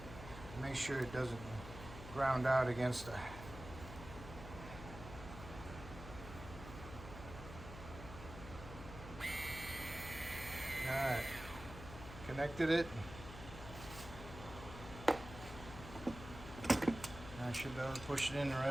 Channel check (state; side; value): noise; left; hum, 12 dB below the sound